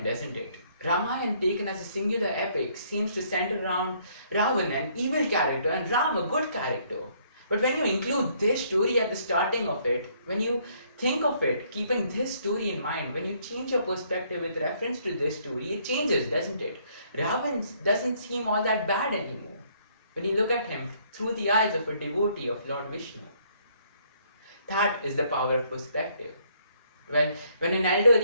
doesn't it? Ramayana, taken as a singular epic, seems to center around Ravan, an evil character, and Ram, a good character. But when you include this story at the starting of it, when you think of it, keeping this story in mind, when you change your perspective with reference to this story, it changes, doesn't it? Ravan doesn't seem all that bad anymore when you look at him through the eyes of a devotee of Lord Vishnu. That is the power of perspective. Well, when an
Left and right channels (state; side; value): inverted; both; correlation -0.66